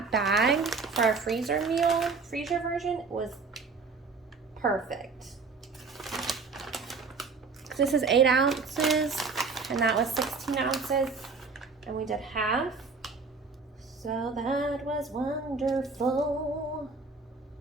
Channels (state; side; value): quieter; left; 4.4 dB